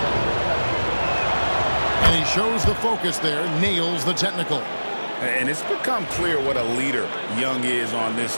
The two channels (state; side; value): inverted; both; correlation -1.00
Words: And he shows the focus there, nails the technical. And it's become clear what a leader Young is on this